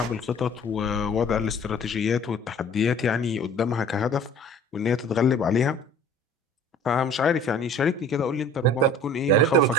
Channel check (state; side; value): normal; both; correlation 0.48